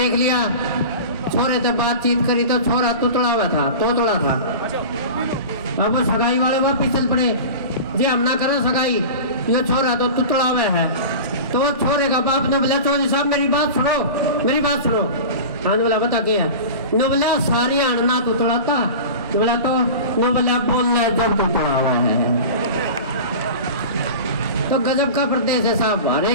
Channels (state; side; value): inverted; both; correlation -0.33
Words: लिया, छोरे से बातचीत करी तो छोरा तुतड़ा हुआ था, तोतड़ा था। अब वो सगाई वाले वो पिछल पड़े, जी हम ना करो सगाई, ये छोरा तो तुतड़ा हुआ है। तो वो छोरे का बाप ने बोला चौधरी साहब मेरी बात सुनो, मेरी बात सुनो। हाँ बोला बता क्या है। नो बोला सारी अड़ना तुतड़ा था। बोला तो नो बोला बोल रहे जब तुतड़ा हुआ है। तो गजब का प्रदेश है साहब, हर